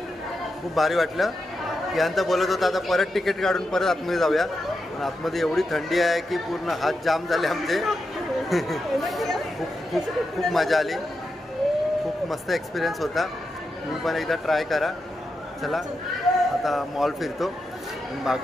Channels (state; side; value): normal; both; correlation 0.87